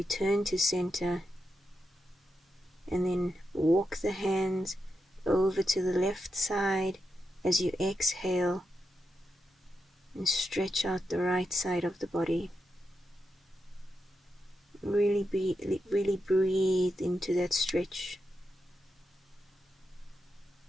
to center. And then walk the hands over to the left side as you exhale and stretch out the right side of the body. Really breathe into that stretch.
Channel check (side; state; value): both; normal; correlation 0.86